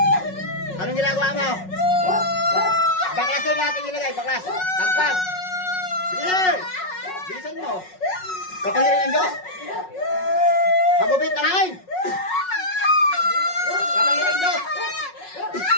Anong ginagawa mo? Baklas na natin nilagay, baklas. Pagpag. Bilis! Bilisan mo. Kapangyarihan ng Diyos. Pagupit na hain. Kapangyarihan ng Diyos.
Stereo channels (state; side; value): late; right; 5.4 ms